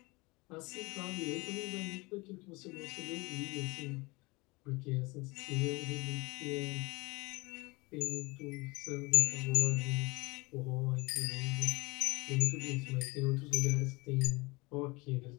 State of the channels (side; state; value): right; quieter; 24.9 dB